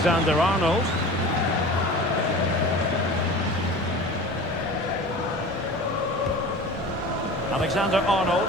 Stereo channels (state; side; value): normal; both; correlation 0.37